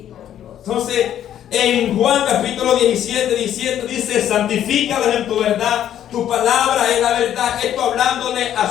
Entonces, en Juan capítulo 17 dice, santifícalos en tu verdad, tu palabra es la verdad. Esto hablándole a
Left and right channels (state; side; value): quieter; right; 10.8 dB